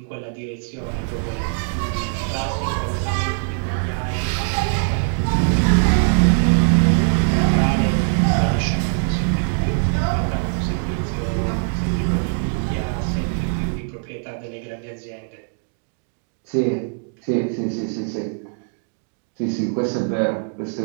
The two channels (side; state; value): left; silent; digital silence